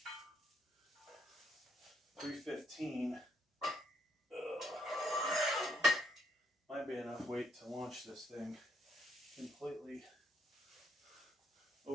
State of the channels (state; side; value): normal; both; correlation 0.73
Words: 315 might be enough weight to launch this thing completely